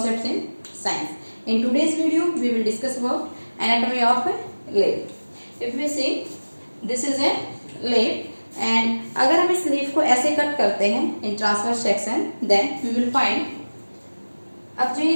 in Science. In today's video, we will discuss about anatomy of a leaf. If we see, this is a leaf and अगर हम इस leaf को ऐसे cut करते हैं in transverse section, then we will find अब जो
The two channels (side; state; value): both; inverted; correlation -1.00